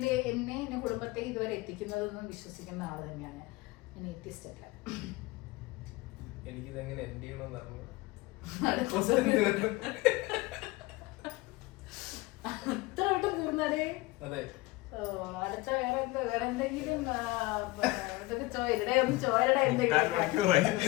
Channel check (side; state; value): right; quieter; 20.7 dB